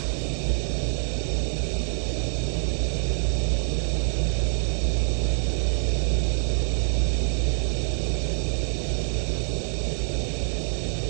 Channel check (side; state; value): left; silent; digital silence